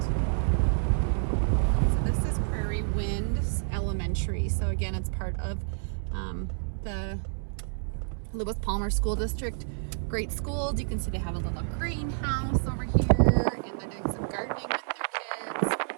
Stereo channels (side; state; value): left; silent; 59 dB below the other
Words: So this is Prairie Winds Elementary. So again, it's part of the Lewis Palmer School District. Great schools. You can see they have a little greenhouse over here, and they're doing some gardening with their kids.